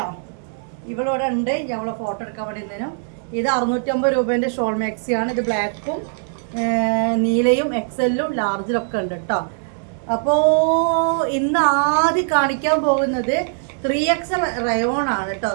ഇവളിവിടെ ഉണ്ട്. ഞങ്ങളെ ഫോട്ടോ എടുക്കാൻ വേണ്ടി ഇന്നേനും. ഇത് 650 രൂപേൻ്റെ ഷോൾ മാക്സിയാണ്. ഇത് ബ്ലാക്കും നീലയും എക്സലും ലാർജിലൊക്കെ ഉണ്ട് കേട്ടോ. അപ്പോൾ ഇന്ന് ആദ്യം കാണിക്കാൻ പോകുന്നത് 3XL റയോൺ ആണ് കേട്ടോ.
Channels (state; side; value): silent; left; digital silence